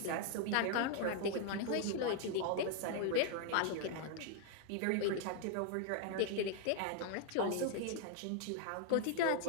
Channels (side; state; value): both; different; correlation 0.00